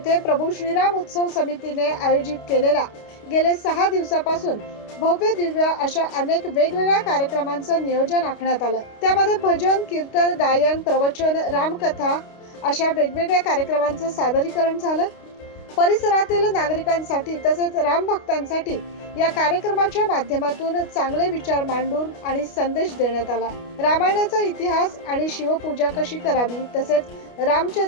प्रभू श्रीराम उत्सव समितीने आयोजित केलेला गेले 6 दिवसापासून भव्य दिव्य अशा अनेक वेगवेगळ्या कार्यक्रमांचं नियोजन आखण्यात आलं। त्यामध्ये भजन, कीर्तन, गायन, प्रवचन, रामकथा अशा वेगवेगळ्या कार्यक्रमांचं सादरीकरण झालं। परिसरातील नागरिकांसाठी तसेच राम भक्तांसाठी या कार्यक्रमाच्या माध्यमातून चांगले विचार मांडून आणि संदेश देण्यात आला। रामायणाचा इतिहास आणि शिवपूजा कशी करावी तसेच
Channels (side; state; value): right; late; 29 ms